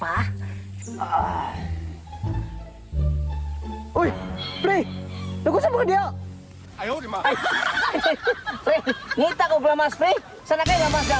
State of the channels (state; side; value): identical; both; correlation 1.00